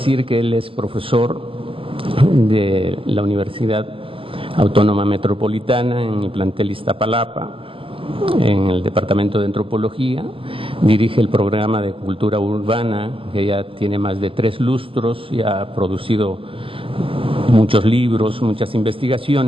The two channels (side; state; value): left; late; 0.26 ms